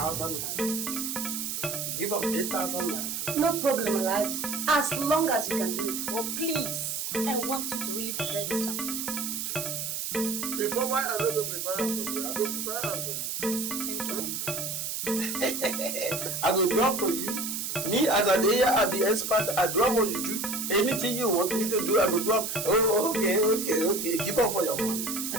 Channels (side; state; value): right; noise; hiss, 3 dB below the sound